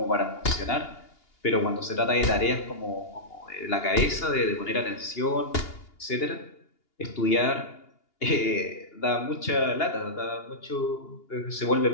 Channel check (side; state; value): right; late; 2.8 ms